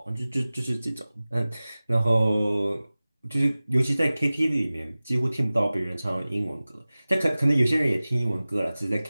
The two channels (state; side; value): inverted; both; correlation -0.98